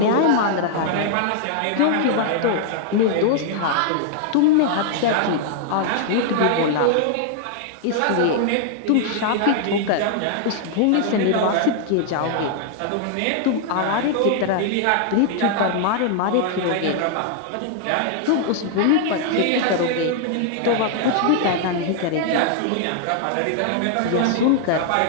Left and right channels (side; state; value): both; different; correlation -0.01